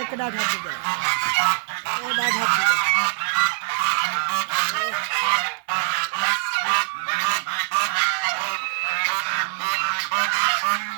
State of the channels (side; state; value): left; silent; 56 dB below the other